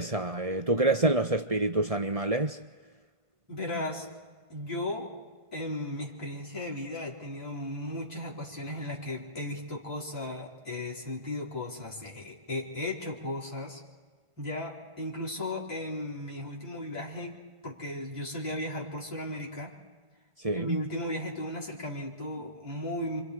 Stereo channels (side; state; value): left; late; 1.5 ms